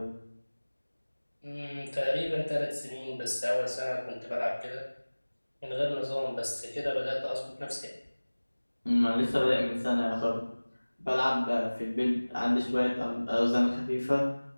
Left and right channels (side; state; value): both; inverted; correlation -1.00